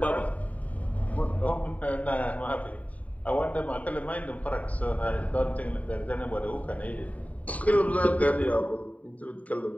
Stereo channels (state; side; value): late; right; 0.069 ms